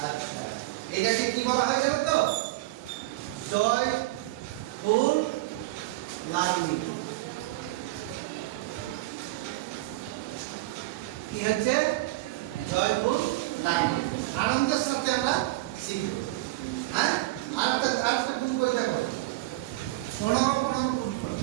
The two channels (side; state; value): left; quieter; 19.1 dB